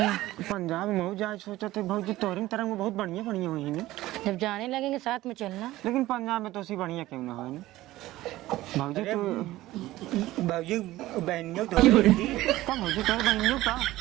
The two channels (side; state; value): left; quieter; 16.5 dB